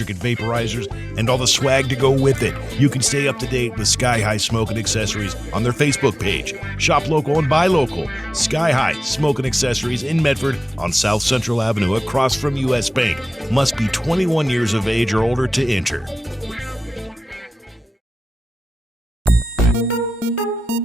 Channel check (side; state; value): both; normal; correlation 0.95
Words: vaporizers and all the swag to go with it. You can stay up to date with Sky High Smoking Accessories on their Facebook page. Shop local and buy local. Sky High Smoking Accessories in Medford on South Central Avenue across from U.S. Bank. Must be 21 years of age or older to enter.